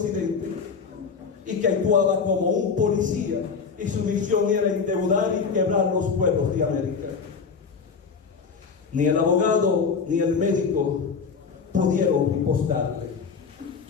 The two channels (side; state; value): right; quieter; 5.5 dB